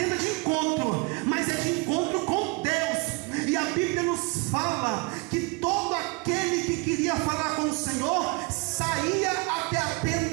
de encontro, mas é de encontro com Deus. E a Bíblia nos fala que todo aquele que queria falar com o Senhor saía até a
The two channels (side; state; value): left; quieter; 27.7 dB